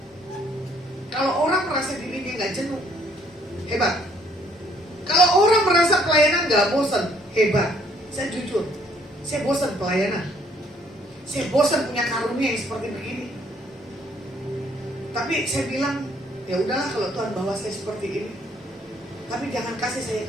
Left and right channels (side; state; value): both; normal; correlation 0.64